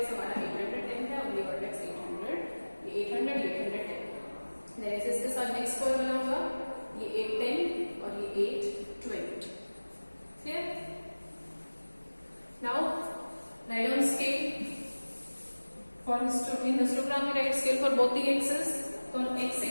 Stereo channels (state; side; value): inverted; both; correlation -1.00